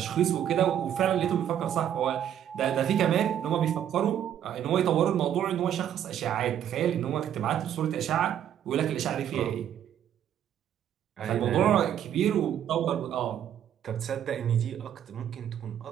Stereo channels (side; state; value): left; quieter; 10.1 dB